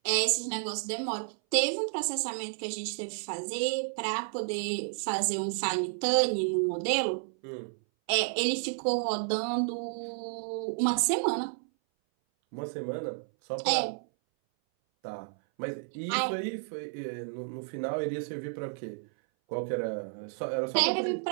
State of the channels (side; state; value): left; silent; 57 dB below the other